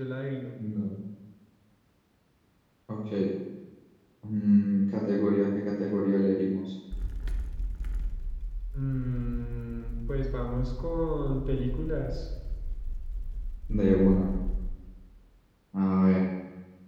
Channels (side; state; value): both; identical; correlation 1.00